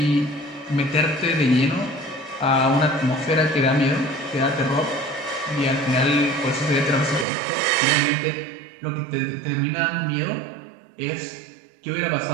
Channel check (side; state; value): left; drops out; at 7.2 s